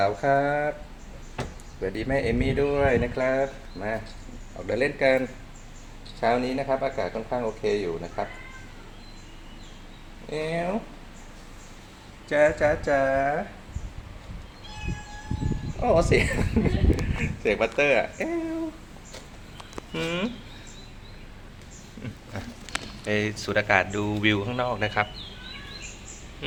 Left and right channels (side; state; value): both; identical; correlation 1.00